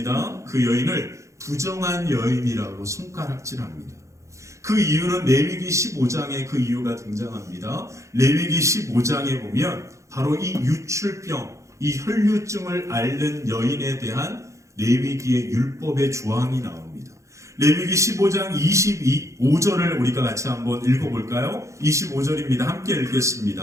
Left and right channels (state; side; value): late; left; 0.15 ms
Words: 그 여인을 부정한 여인이라고 손가락질합니다. 그 이유는 레위기 15장에 그 이유가 등장합니다. 레위기 15장에 보면 바로 이 유출병, 이 혈루증을 앓는 여인에 대한 레위기의 율법의 조항이 나옵니다. 레위기 15장 25절을 우리가 같이 한번 읽어볼까요? 25절입니다. 함께